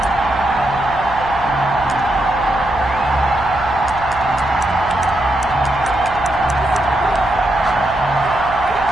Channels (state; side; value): noise; right; hum, 14 dB below the sound